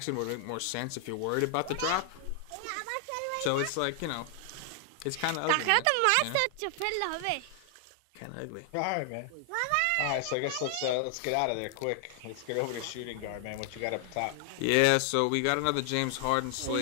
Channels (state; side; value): different; both; correlation 0.00